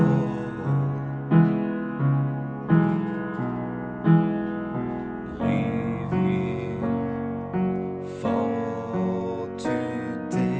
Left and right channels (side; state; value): both; identical; correlation 1.00